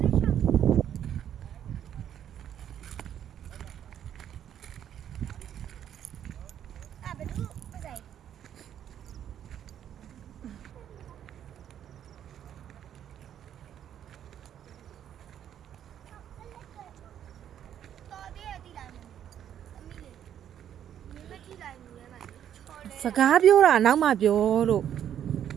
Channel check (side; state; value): left; quieter; 10.0 dB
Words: စကားပြောတာနောက်မှပြောလို့